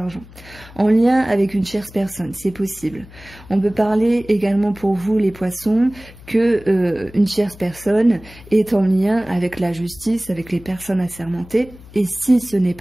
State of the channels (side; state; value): left; noise; hum, 20 dB below the sound